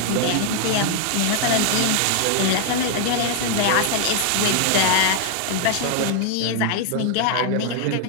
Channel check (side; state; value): both; different; correlation 0.00